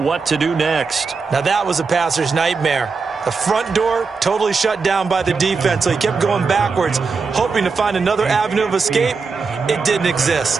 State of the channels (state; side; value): quieter; left; 4.8 dB